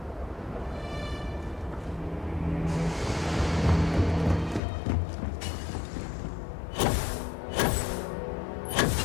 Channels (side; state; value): right; drops out; at 4.6 s